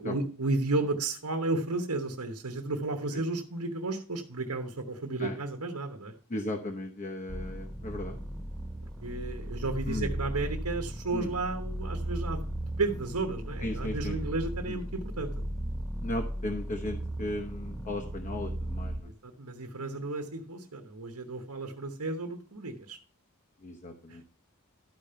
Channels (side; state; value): both; normal; correlation 0.38